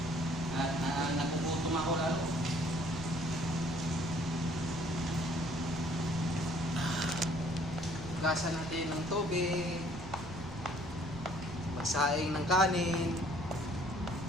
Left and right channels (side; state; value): right; noise; rumble, 13 dB below the sound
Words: At nagugutom ako lalo. Hugasan natin ng tubig. Magsaing ng kanin.